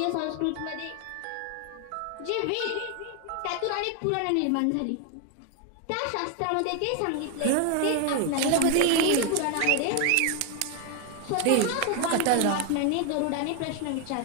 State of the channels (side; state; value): both; different; correlation 0.01